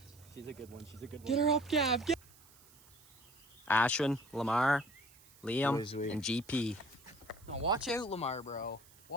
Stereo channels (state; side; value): noise; right; hiss, 25 dB below the sound